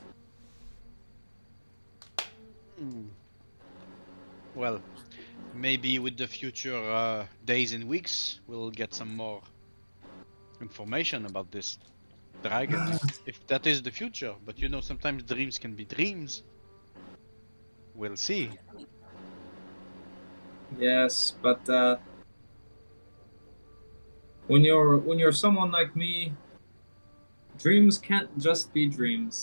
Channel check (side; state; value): both; inverted; correlation -1.00